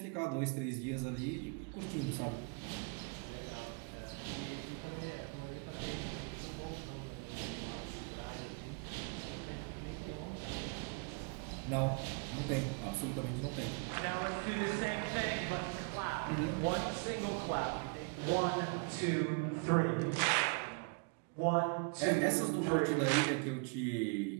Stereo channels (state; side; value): quieter; left; 34.7 dB